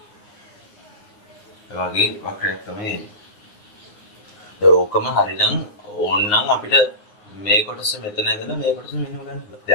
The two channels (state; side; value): late; right; 9.7 ms